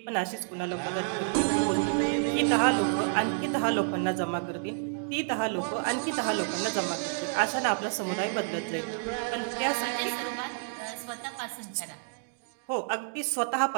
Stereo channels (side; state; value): left; silent; digital silence